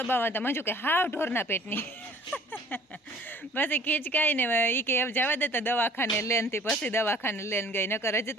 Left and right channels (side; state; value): both; normal; correlation 0.51